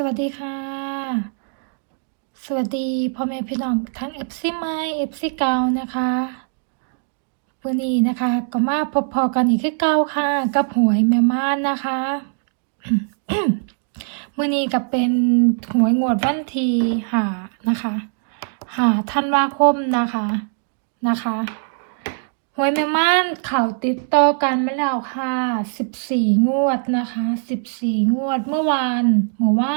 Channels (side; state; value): left; silent; 58 dB below the other